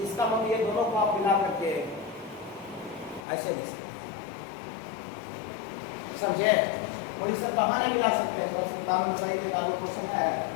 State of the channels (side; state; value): right; drops out; at 3.2 s